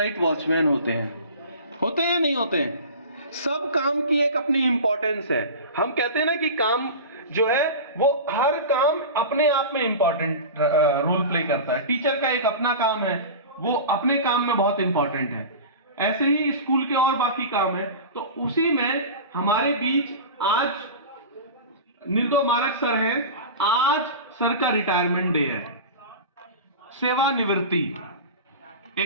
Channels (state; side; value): inverted; both; correlation -0.31